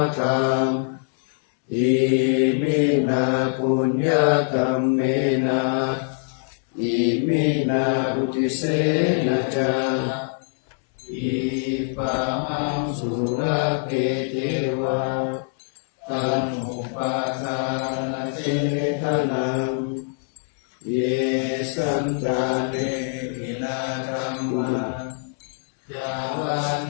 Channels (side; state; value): right; silent; 63 dB below the other